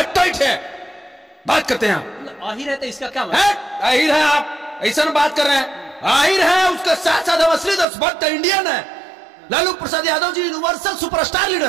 टाइट है बात करते हैं। आहिर है तो इसका क्या है? आहिर है आप ऐसा बात कर रहे हैं? आहिर है, उसके साथ साथ असली देशभक्त इंडियन है। Lalu Prasad Yadav ji universal superstar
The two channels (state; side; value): drops out; left; at 7.9 s